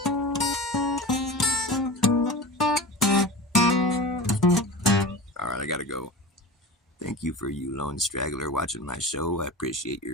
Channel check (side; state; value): both; normal; correlation 0.31